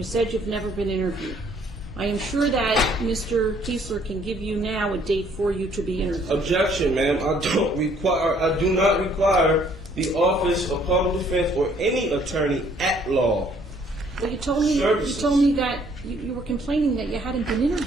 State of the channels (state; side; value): normal; both; correlation 0.62